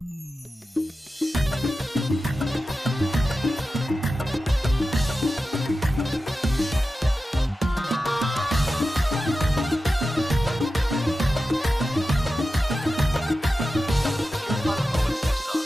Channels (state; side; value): normal; both; correlation 0.93